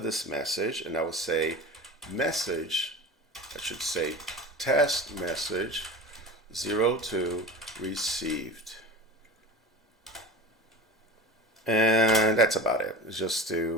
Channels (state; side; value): normal; both; correlation 0.32